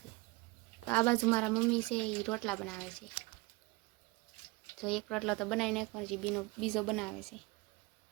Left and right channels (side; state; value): left; quieter; 23.8 dB